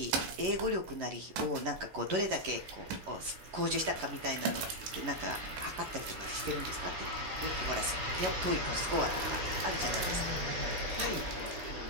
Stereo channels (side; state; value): left; late; 11 ms